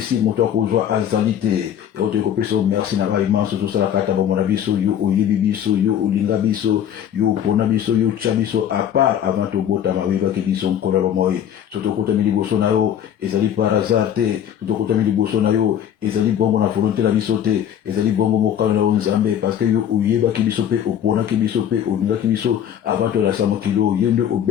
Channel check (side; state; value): right; quieter; 9.7 dB